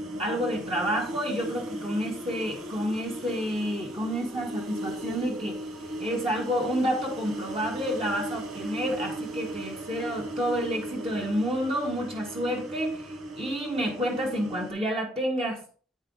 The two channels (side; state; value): both; normal; correlation 0.66